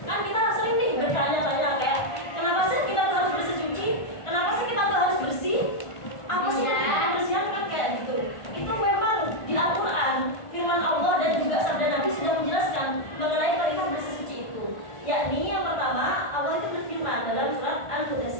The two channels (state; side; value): late; right; 1.4 ms